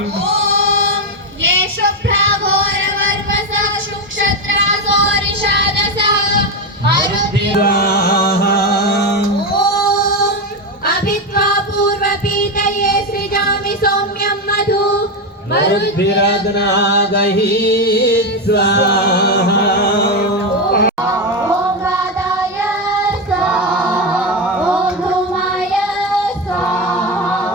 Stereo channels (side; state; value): both; normal; correlation 0.11